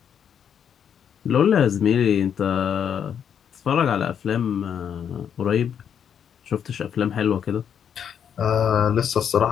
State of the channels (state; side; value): quieter; right; 8.2 dB